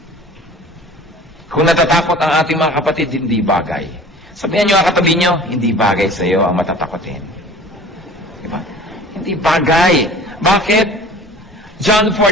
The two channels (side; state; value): both; normal; correlation 0.44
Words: Kung natatakot ang ating mga kapatid, hindi bagay. Sabihan nyo ang katabi nyo, hindi bagay sa'yo ang matatakotin. Diba? Hindi bagay. Bakit? John